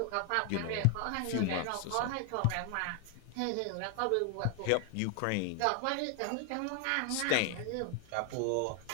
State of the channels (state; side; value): different; both; correlation 0.00